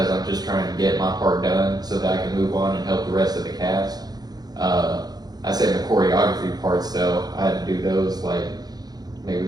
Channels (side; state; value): left; late; 0.19 ms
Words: I'm just trying to get my part done so that I can move on and help the rest of the cast. I said the choreography parts, though, I had to do those like